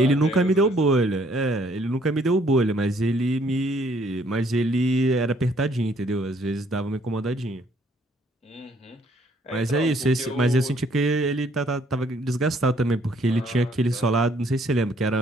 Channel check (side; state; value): both; normal; correlation 0.64